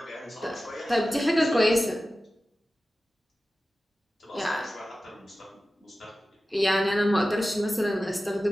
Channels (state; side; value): normal; both; correlation 0.95